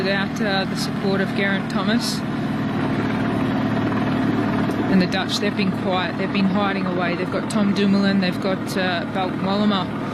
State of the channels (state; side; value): identical; both; correlation 1.00